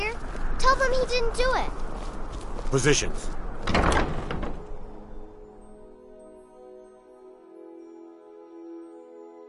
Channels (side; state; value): both; identical; correlation 1.00